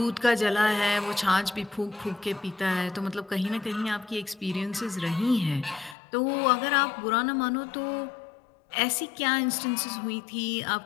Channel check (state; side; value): drops out; right; at 6.0 s